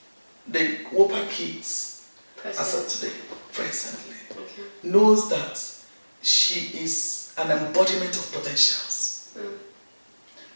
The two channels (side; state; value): both; inverted; correlation -1.00